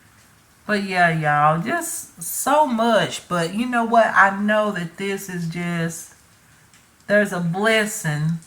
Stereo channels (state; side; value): identical; both; correlation 1.00